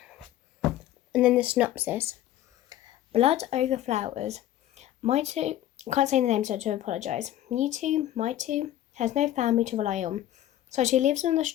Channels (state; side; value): quieter; right; 13.0 dB